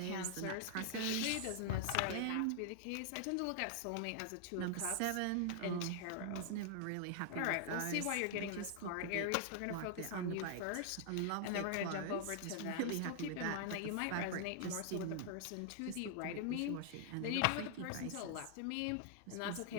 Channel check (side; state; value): both; different; correlation 0.00